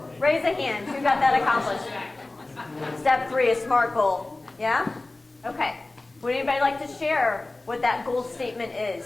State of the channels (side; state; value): right; quieter; 3.0 dB